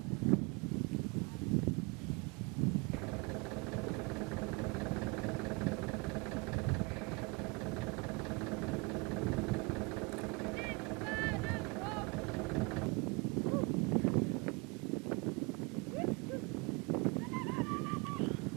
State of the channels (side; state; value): left; quieter; 28.0 dB